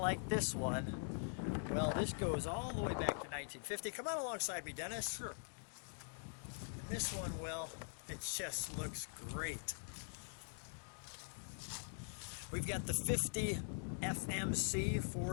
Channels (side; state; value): right; silent; digital silence